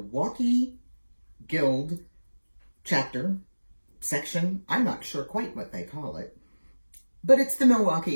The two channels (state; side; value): inverted; both; correlation -1.00